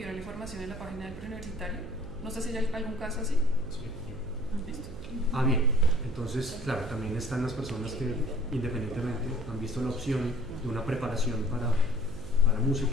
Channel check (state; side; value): noise; right; hum, 11 dB below the sound